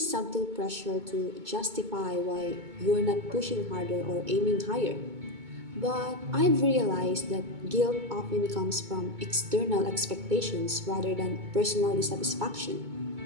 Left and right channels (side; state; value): left; late; 2.2 ms